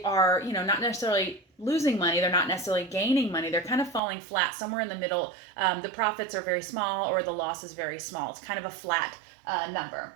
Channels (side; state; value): left; drops out; at 4.0 s